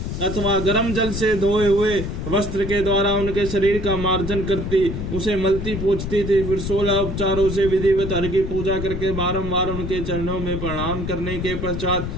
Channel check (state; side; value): noise; left; rumble, 5 dB below the sound